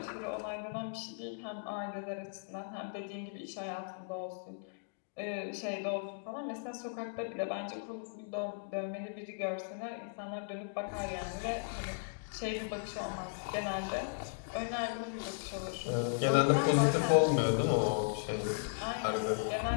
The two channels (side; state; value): right; silent; digital silence